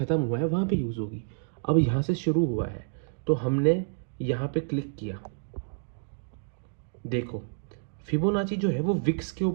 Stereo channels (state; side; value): silent; left; digital silence